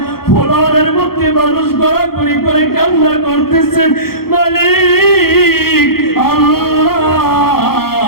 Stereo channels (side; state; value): right; late; 0.94 ms